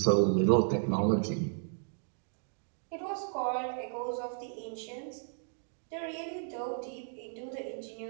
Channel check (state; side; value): silent; left; digital silence